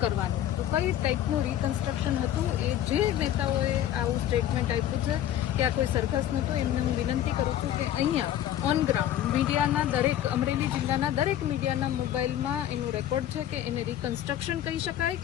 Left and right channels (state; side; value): quieter; right; 11.7 dB